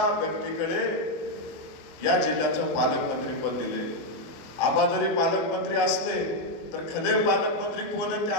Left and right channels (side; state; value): right; late; 23 ms